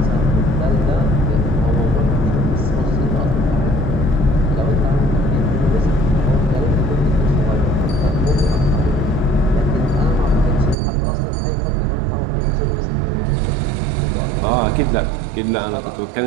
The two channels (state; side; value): drops out; left; at 10.8 s